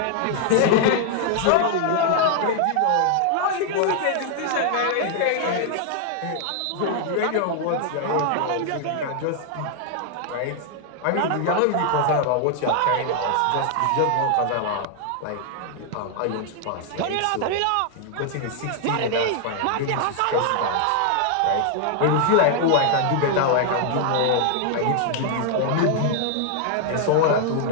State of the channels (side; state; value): both; different; correlation 0.00